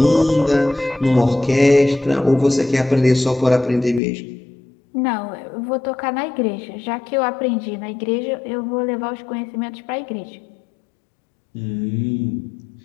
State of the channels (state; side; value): drops out; right; at 4.0 s